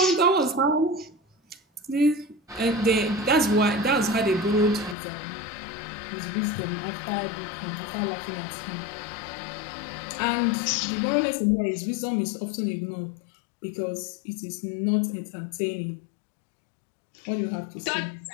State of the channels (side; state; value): right; drops out; at 5.0 s